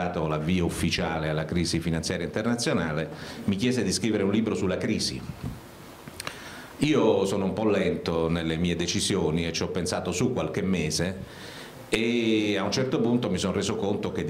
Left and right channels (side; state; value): both; identical; correlation 1.00